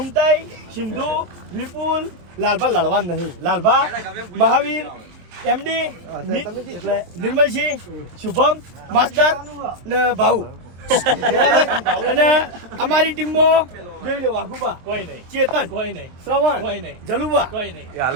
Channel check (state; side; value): late; left; 23 ms